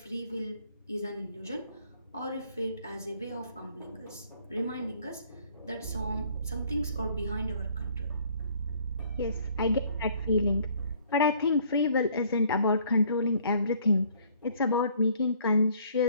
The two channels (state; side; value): inverted; both; correlation -0.59